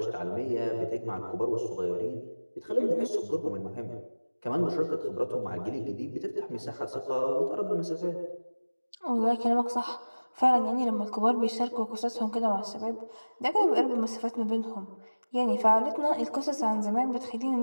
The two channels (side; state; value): both; inverted; correlation -1.00